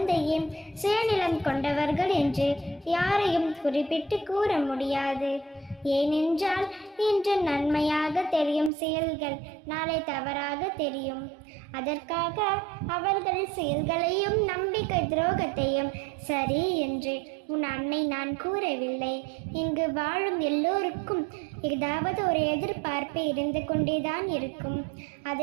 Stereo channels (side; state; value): left; drops out; at 8.7 s